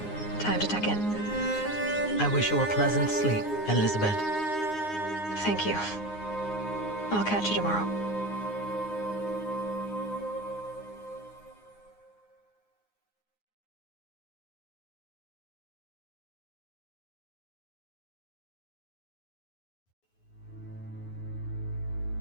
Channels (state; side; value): late; right; 9.7 ms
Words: Time to tuck in. I wish you a pleasant sleep, Elizabeth. Thank you. I'll catch you tomorrow.